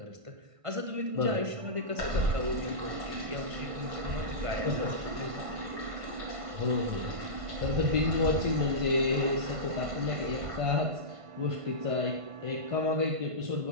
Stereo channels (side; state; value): left; late; 1.5 ms